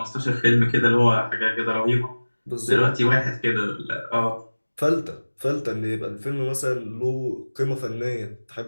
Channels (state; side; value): inverted; both; correlation -1.00